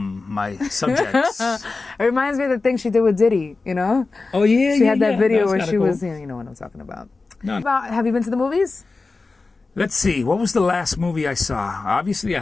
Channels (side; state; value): right; quieter; 3.8 dB